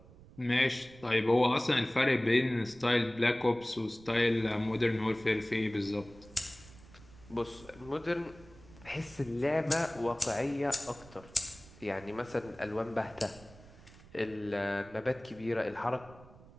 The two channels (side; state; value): right; noise; rumble, 21 dB below the sound